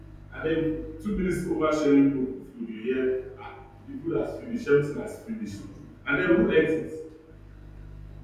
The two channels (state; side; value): identical; both; correlation 1.00